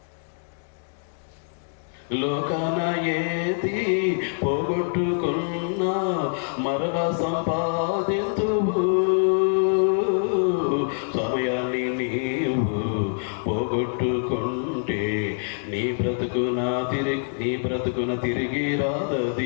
లోకాన ఏది పోగొట్టుకున్నా మరలా సంపాదింతువు. సమయాన్ని నీవు పోగొట్టుకుంటే నీ బ్రతుకున తిరిగి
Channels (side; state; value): right; silent; digital silence